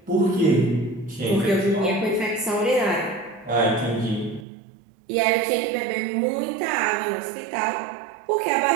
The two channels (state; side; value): drops out; left; at 4.5 s